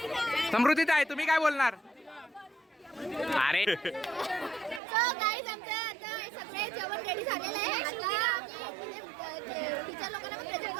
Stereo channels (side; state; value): left; drops out; at 4.8 s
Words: समृद्धीत आहे. तुम्ही काय बोलणार? अरे गाईज आमचं आता सगळे जेवण रेडी झालेलं आहे. आता टीचर लोकांना पण प्रेझेंट